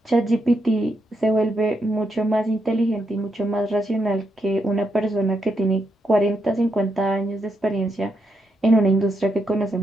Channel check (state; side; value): normal; both; correlation 0.81